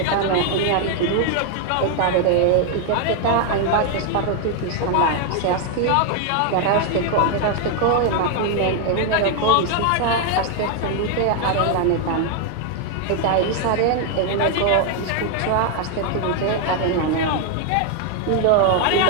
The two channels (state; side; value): different; both; correlation 0.00